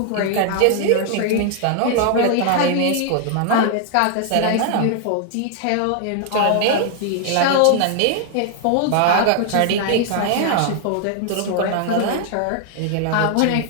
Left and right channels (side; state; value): both; different; correlation 0.00